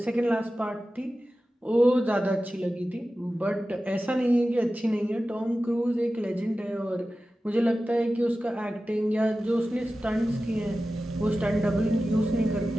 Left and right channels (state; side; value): normal; both; correlation 0.94